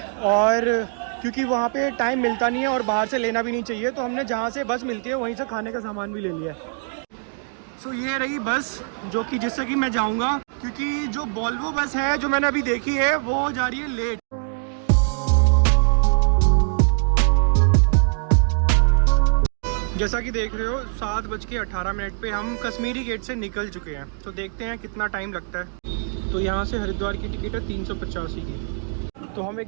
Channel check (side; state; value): left; silent; 58 dB below the other